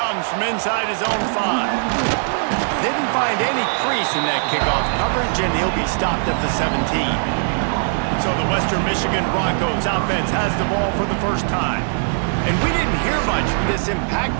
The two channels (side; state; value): left; silent; digital silence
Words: from inside his own 5. Didn't find any crease in that kickoff coverage, and he'll be stopped at the 17. So the Western Michigan Broncos offense has the ball for the 1st time. And we didn't hear much from this